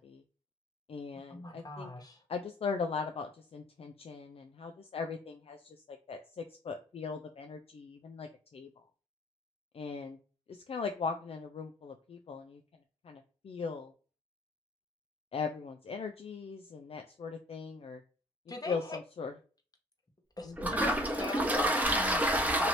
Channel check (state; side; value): normal; both; correlation 0.53